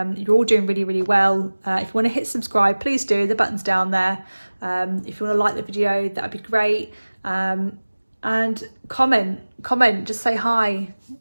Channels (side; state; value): both; inverted; correlation -1.00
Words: all doing really, really well. If you want to hit subscribe, please do. The button's down there. If you want to like the video, that'd be great. And comment, just say hi,